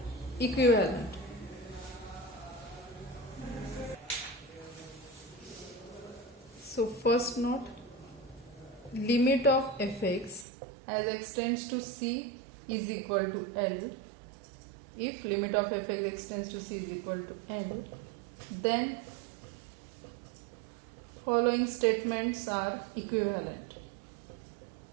equivalent. So first note, limit of fx as x tends to c is equal to L. If limit of fx x tends to c is equal to L, then following statements are equivalent.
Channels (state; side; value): drops out; left; at 10.5 s